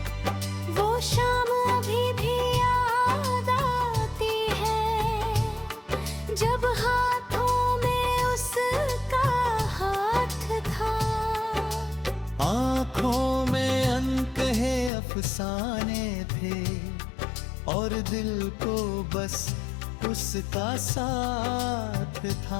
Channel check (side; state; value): right; drops out; at 14.9 s